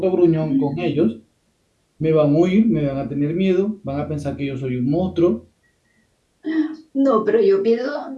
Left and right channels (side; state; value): both; identical; correlation 1.00